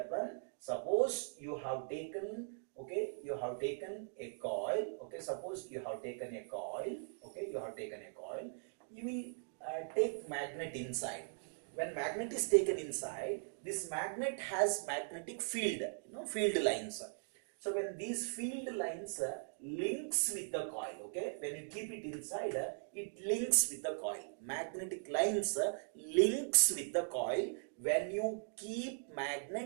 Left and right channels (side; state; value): left; silent; digital silence